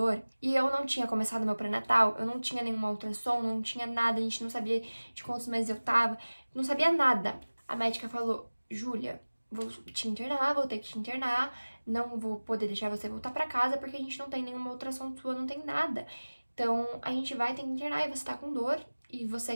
e eu não tinha começado meu pré-natal, eu não tinha nenhuma ultrassom, não tinha nada, a gente não sabia de quantos meses eu tava, não sabia nada. A médica falou, Júlia, vou te internar, vou ter que te internar, não vou poder deixar você voltar pra casa, porque a gente não tem nenhuma ultrassom sua, não tem nada. Então, a gente vai ter que internar e você tá com dor, e você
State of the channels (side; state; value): both; inverted; correlation -1.00